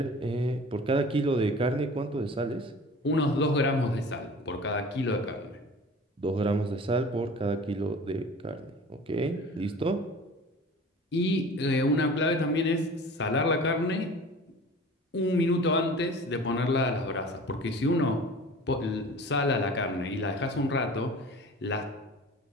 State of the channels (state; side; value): normal; both; correlation 0.41